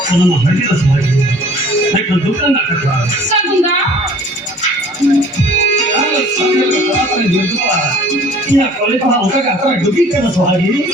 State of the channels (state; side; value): normal; both; correlation 0.51